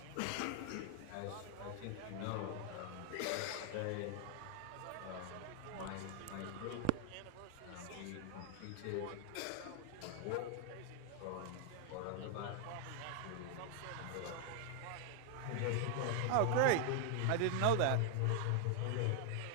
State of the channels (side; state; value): both; different; correlation 0.00